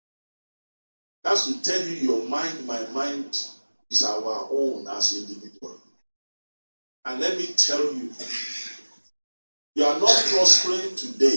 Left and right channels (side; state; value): both; inverted; correlation -1.00